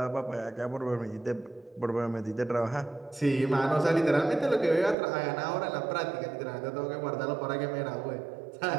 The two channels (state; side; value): drops out; left; at 5.0 s